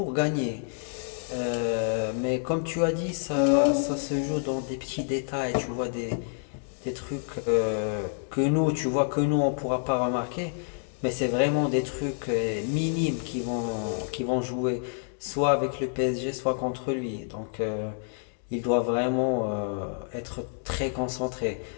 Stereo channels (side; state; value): right; silent; digital silence